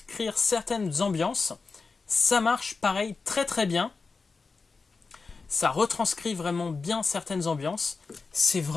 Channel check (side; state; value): right; quieter; 4.4 dB